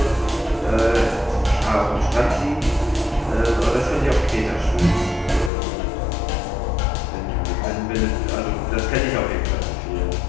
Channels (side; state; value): right; drops out; at 5.5 s